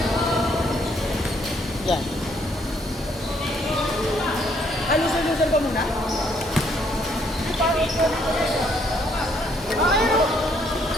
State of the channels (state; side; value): normal; both; correlation 0.68